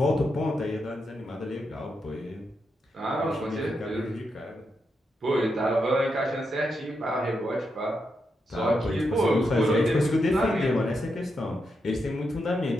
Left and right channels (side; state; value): both; normal; correlation 0.84